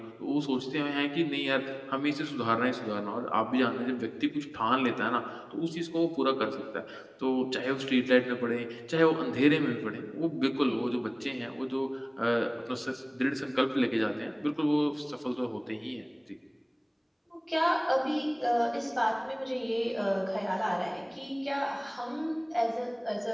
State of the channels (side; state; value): both; identical; correlation 1.00